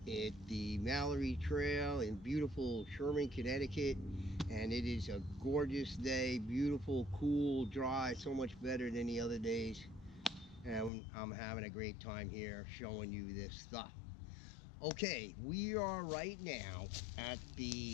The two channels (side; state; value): right; drops out; at 10.9 s